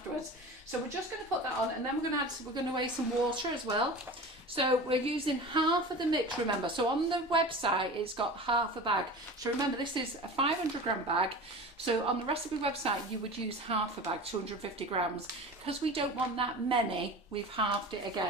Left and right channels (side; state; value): both; normal; correlation 0.34